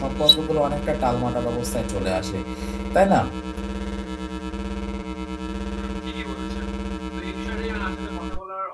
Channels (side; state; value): both; identical; correlation 1.00